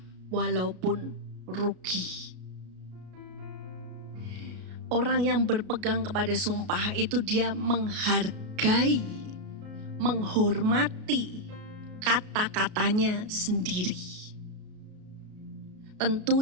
walaupun rugi. Orang yang berpegang kepada sumpah itu dia menghargai, menghormati kata-katanya sendiri.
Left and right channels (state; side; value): late; left; 33 ms